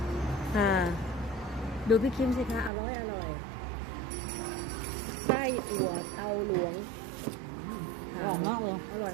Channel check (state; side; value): drops out; left; at 2.7 s